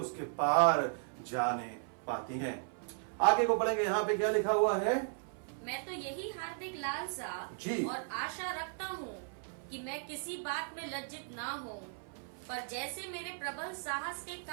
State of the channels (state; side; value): silent; left; 54 dB below the other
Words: पार जाने पाती हैं। आगे को पढ़ेंगे, यहाँ पे क्या लिखा हुआ है? मैं तो यही हार्दिक लालसा जी और आशा रखता हूँ कि मैं किसी बात में लज्जित ना हो, पर जैसे मेरे प्रबल साहस के